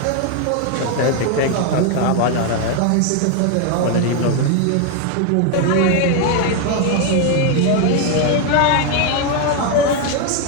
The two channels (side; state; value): both; different; correlation 0.01